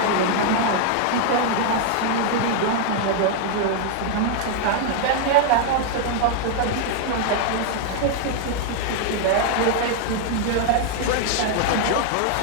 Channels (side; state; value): both; different; correlation 0.00